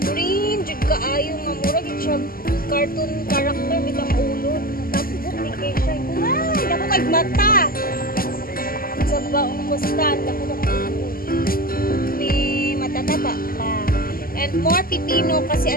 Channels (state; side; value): late; right; 0.42 ms